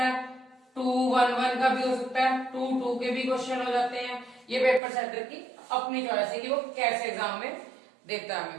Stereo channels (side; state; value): left; drops out; at 4.8 s